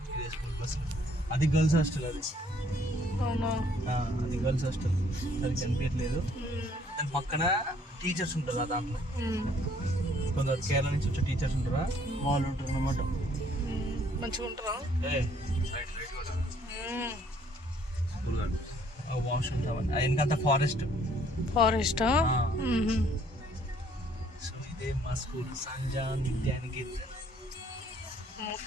ఇదే స్కూల్ బస్. అది గర్ల్స్ హాస్టల్. అది అది గర్ల్స్ హాస్టల్. సరిగ్గా కనిపించట్లేదు. దాని పక్కన టీచర్స్ ఉంటారు. దాంట్లో కొందరు కేరళ నుంచి వచ్చే టీచర్స్ ఉంటారా, వాళ్ళు ఉంటారు అన్నమాట. మంచిగా ఉంటారా? వాష్రూమ్స్ అవన్నీ వెనకంతా ఫారెస్టా? సో ఇదే మా స్కూల్, సంజాన్ విద్యానికేతన్.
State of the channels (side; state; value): both; normal; correlation 0.63